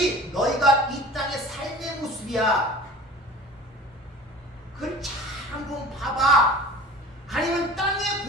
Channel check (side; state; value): both; normal; correlation 0.41